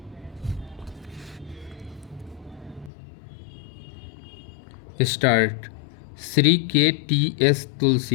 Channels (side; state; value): right; drops out; at 2.9 s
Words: Start. Sri K.T.S.